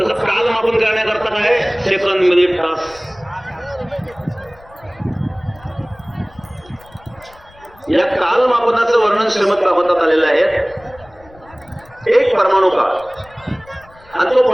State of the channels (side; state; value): left; noise; rumble, 26 dB below the sound